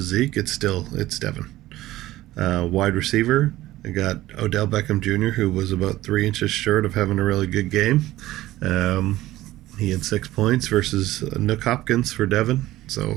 Zeke. It's Devin. Wide receiver, I got Odell Beckham Jr., who was about 3 inches short of having a really good game. He had 6 points versus Nick Hopkins for Devin, so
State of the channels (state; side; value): quieter; left; 16.1 dB